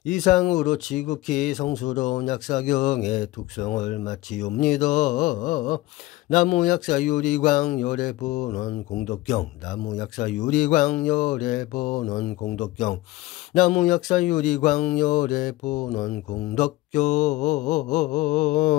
이상으로 지극히 성스러운 약사경의 독성을 마치옵니다. 나무 약사 유리광 열의 본원 공덕경. 나무 약사 유리광 열의 본원 공덕경. 나무 약사 유리광 열의 본원 공덕경.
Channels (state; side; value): quieter; right; 18.4 dB